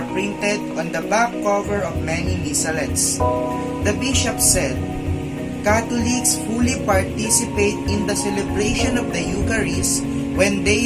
printed on the back cover of many missalettes. The bishop said, Catholics fully participate in the celebration of the Eucharist when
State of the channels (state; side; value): identical; both; correlation 1.00